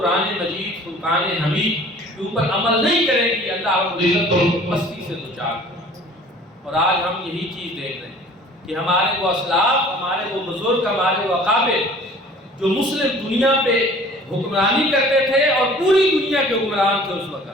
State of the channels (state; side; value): normal; both; correlation 0.49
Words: مجید فرقان حمید کے اوپر عمل نہیں کریں گی اللہ رب العزت کو مستی سے دوچار کرے۔ اور آج ہم یہی چیز دیکھ رہے ہیں کہ ہمارے وہ اسلاف، ہمارے وہ بزرگ، ہمارے وہ اکابر جو مسلم دنیا پہ حکمرانی کرتے تھے اور پوری دنیا کے حکمران تھے اس وقت،